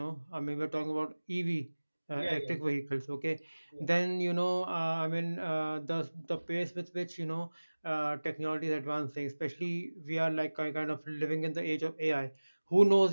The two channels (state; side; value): inverted; both; correlation -1.00